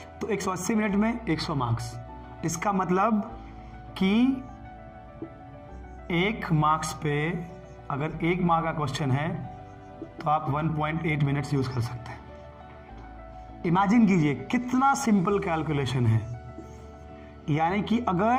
तो 180 मिनट में 100 मार्क्स, इसका मतलब कि 1 मार्क्स पे अगर 1 मार्क का क्वेश्चन है तो आप 1.8 मिनट्स यूज कर सकते हैं। इमेजिन कीजिए कितना सिंपल कैलकुलेशन है। यानी कि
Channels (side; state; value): both; identical; correlation 1.00